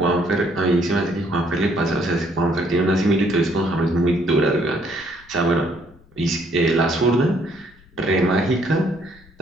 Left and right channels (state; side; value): noise; left; rumble, 26 dB below the sound